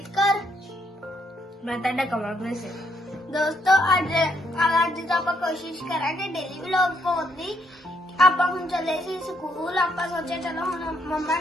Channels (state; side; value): normal; both; correlation 0.73